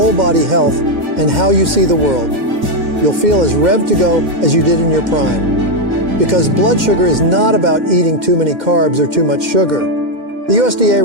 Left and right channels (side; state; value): left; late; 2.1 ms